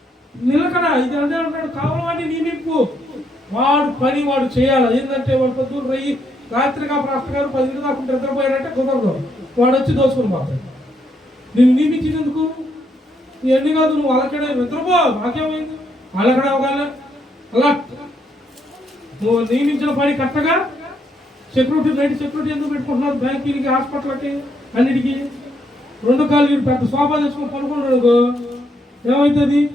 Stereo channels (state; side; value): normal; both; correlation 0.75